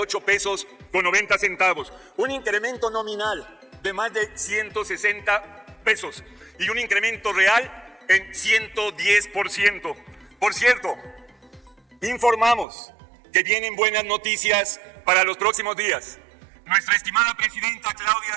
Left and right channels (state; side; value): drops out; left; at 12.7 s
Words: pesos con 90 centavos. Un incremento nominal de más de 160 pesos y un incremento real en 110%. Por cierto, informamos que vienen buenas noticias para los próximos días. Nuestra estimada presidenta Claudia